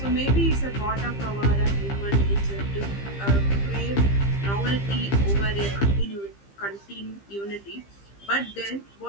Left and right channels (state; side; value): late; right; 15 ms